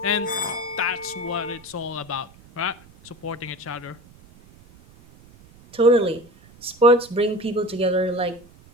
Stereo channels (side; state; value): right; noise; rumble, 25 dB below the sound